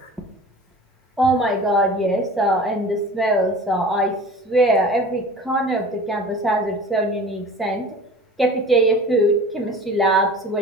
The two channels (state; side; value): normal; both; correlation 0.40